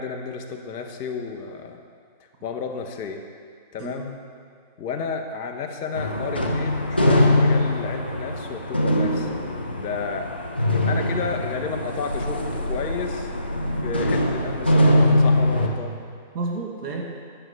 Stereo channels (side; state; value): both; inverted; correlation -0.72